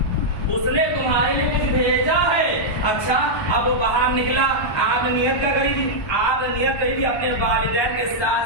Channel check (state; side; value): late; right; 1.1 ms